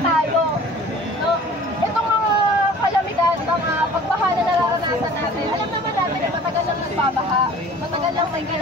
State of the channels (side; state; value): both; normal; correlation 0.46